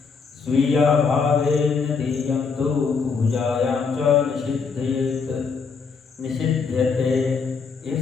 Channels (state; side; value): quieter; right; 5.3 dB